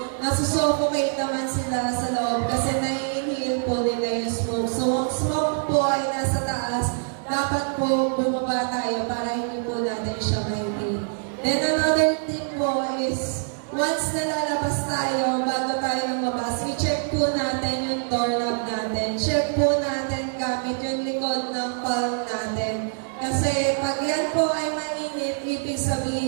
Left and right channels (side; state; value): left; silent; digital silence